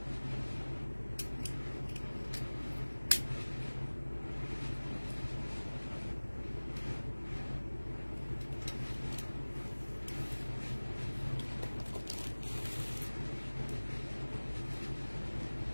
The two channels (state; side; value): inverted; both; correlation -1.00